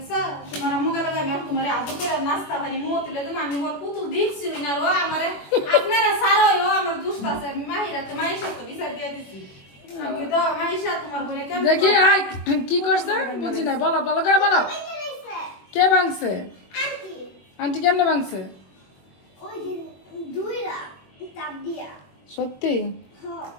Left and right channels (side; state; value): right; late; 21 ms